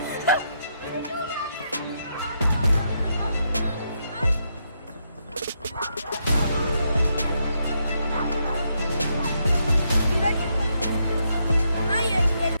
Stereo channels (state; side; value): inverted; both; correlation -0.79